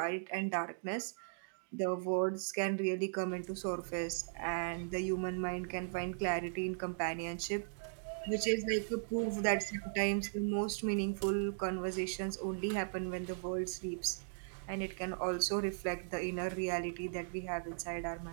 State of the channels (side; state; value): left; silent; digital silence